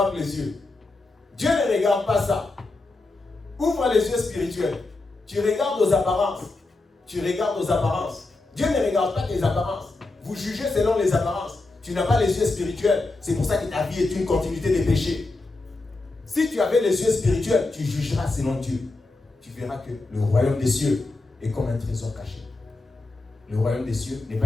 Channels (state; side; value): quieter; right; 3.2 dB